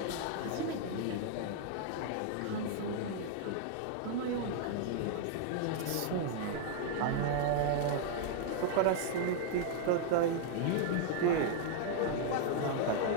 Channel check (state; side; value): different; both; correlation -0.01